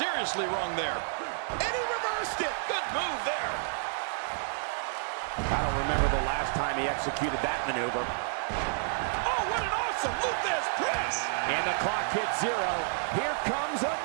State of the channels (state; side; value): silent; left; digital silence